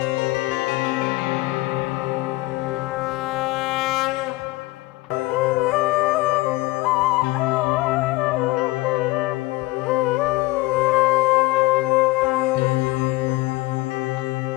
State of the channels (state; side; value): quieter; right; 20.4 dB